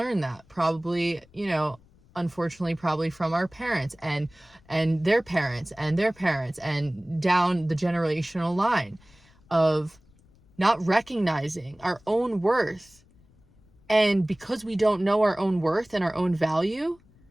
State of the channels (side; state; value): left; noise; rumble, 29 dB below the sound